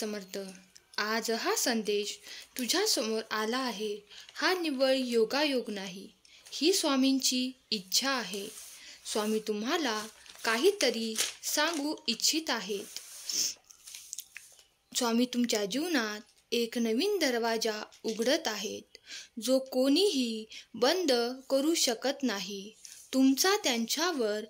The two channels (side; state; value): both; identical; correlation 1.00